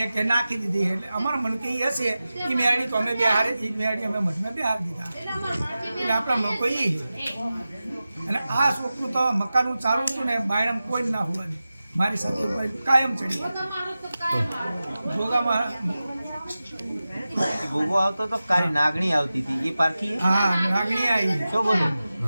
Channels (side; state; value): both; inverted; correlation -0.94